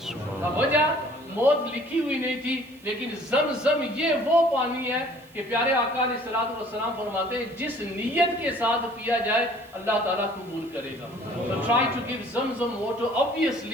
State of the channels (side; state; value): right; noise; hiss, 27 dB below the sound